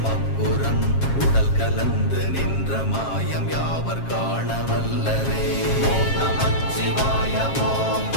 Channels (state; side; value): late; right; 7.4 ms